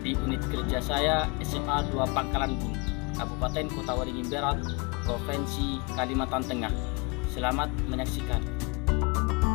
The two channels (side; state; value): right; quieter; 29.5 dB